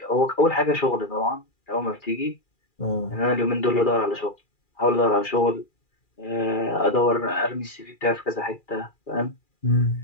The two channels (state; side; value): late; right; 2.4 ms